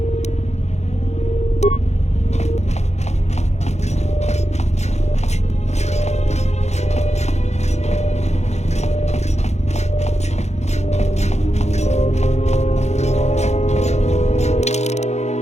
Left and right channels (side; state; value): right; late; 0.32 ms